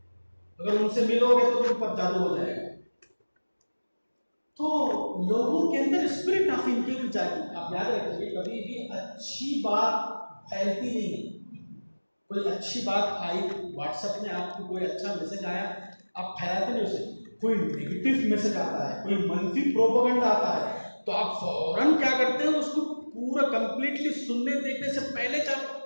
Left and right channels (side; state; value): both; inverted; correlation -1.00